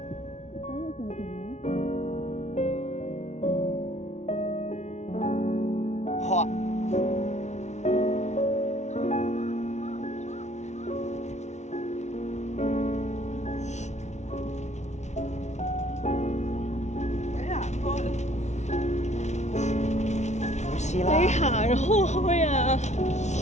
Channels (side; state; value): right; late; 0.33 ms